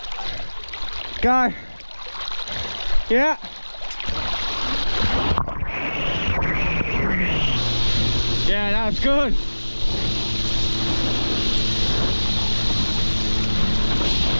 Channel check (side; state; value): both; inverted; correlation -1.00